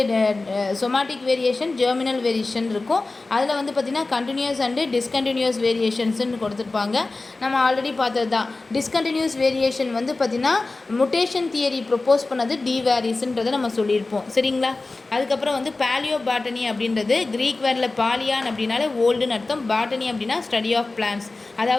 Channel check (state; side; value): quieter; right; 3.4 dB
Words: சொமாட்டிக் வேரியேஷன் ஜெர்மினல் வேரியேஷன் இருக்கும். அதில் வந்து பார்த்திங்கன்னா கண்டினியூஸ் அண்டு டிஸ்கண்டினியூஸ் வேரியேஷன்ஸ்ன்னு கொடுத்துருப்பாங்க. நம்ம ஆல்ரெடி பார்த்தது தான். டிஸ்கண்டினியூஸ் வேரியேஷன் வந்து பார்த்திங்கன்னா முட்டேஷன் தியரி ப்ரொப்போஸ் பண்ணது டி வேரிஸ்ன்றதை நம்ம சொல்லியிருப்போம். சரிங்களா? அதுக்கப்புறம் வந்து பேலியோ பாட்டனி அப்படின்றது கிரீக் வேர்டில் பாலியான் அப்படின்னாலே ஓல்டுன்னு அர்த்தம், பாட்டனி அப்படின்னா ஸ்டடி ஆஃப் பிளான்ஸ்.